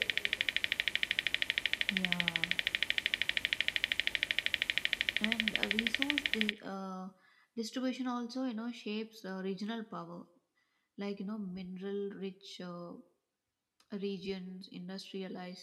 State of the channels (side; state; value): both; identical; correlation 1.00